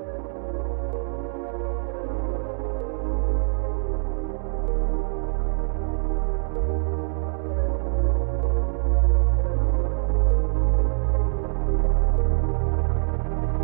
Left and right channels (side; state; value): left; silent; 62 dB below the other